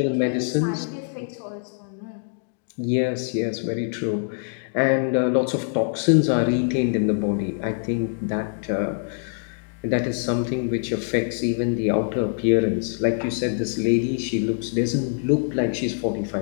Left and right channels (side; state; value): right; silent; digital silence